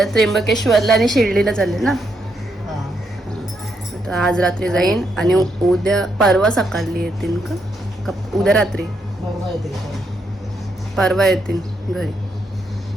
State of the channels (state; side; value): normal; both; correlation 0.78